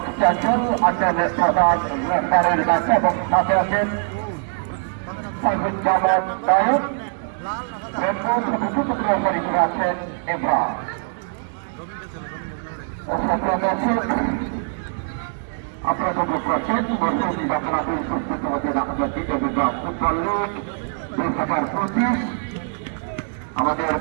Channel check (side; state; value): left; silent; digital silence